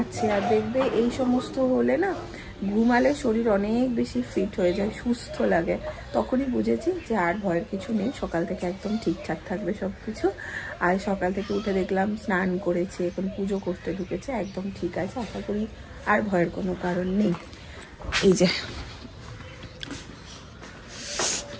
আর দেখবে এই সমস্ত হলে না ঘুমালে শরীর অনেক বেশি ফিট হয়ে যায়, সুস্থ লাগে। তখনই বুঝেছি যে আর ভয়ের কিছু নেই, সকাল থেকে একদম ঠিকঠাক থাকবে সব কিছু। আর সকাল থেকে উঠে দেখলাম স্নান করেছে, এখন পুজো করতে ঢুকেছে, একদম ঠিক আছে। আশা করি আর ভয়ের কোনো কারণ নেই। এই যে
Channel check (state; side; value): identical; both; correlation 1.00